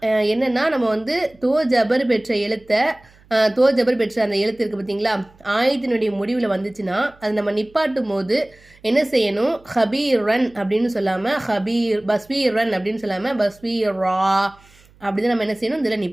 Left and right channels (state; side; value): noise; right; hum, 28 dB below the sound